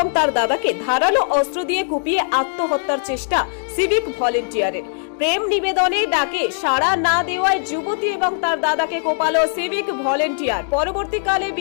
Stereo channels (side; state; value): right; silent; digital silence